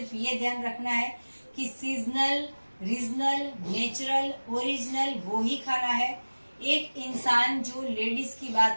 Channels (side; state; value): both; inverted; correlation -1.00